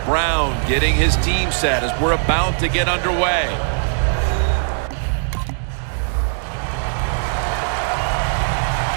Brown getting his team set as we're about to get underway.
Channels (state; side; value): silent; left; digital silence